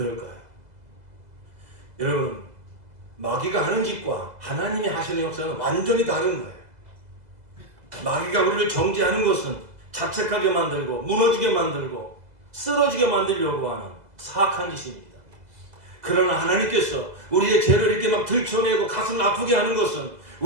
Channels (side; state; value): left; late; 2.0 ms